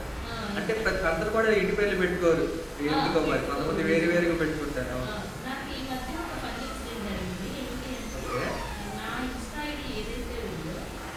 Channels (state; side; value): identical; both; correlation 1.00